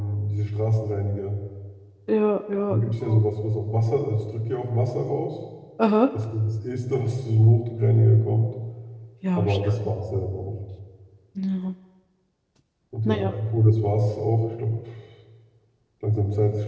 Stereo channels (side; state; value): both; identical; correlation 1.00